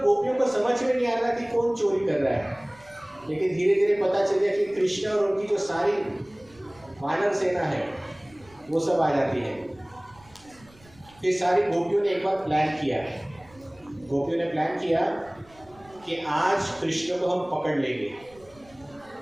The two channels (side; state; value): right; noise; rumble, 27 dB below the sound